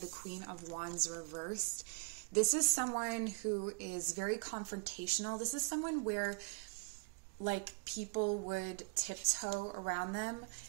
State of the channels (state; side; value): quieter; left; 37.0 dB